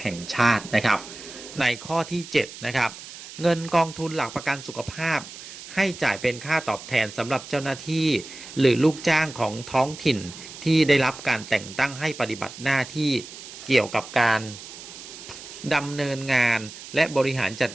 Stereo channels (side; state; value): right; noise; hiss, 14 dB below the sound